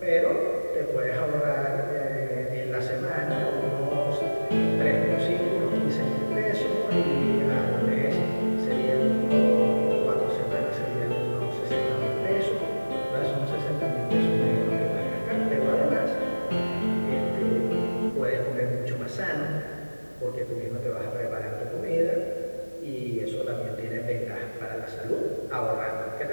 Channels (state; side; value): inverted; both; correlation -1.00